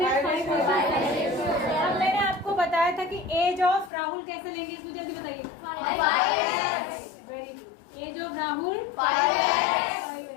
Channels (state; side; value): drops out; right; at 3.9 s